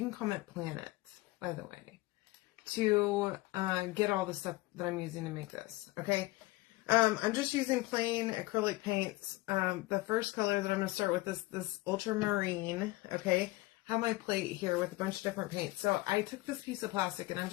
call it planet, by the way, to get all the stuff that I'm using to make this. Okay, I'm just using plain acrylic paints. The first color that I'm going to start with is this ultramarine. Okay. Have my plate here with a bunch of different paints. So I took this piece of plastic and I'm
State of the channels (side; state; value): right; quieter; 19.8 dB